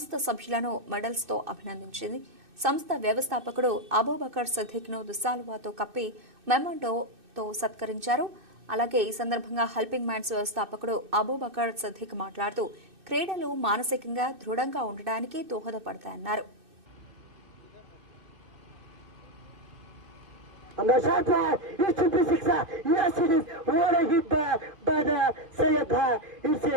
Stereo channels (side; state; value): left; late; 2.6 ms